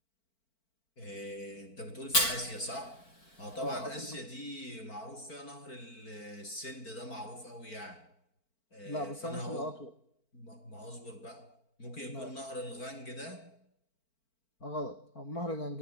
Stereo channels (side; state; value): right; late; 4.5 ms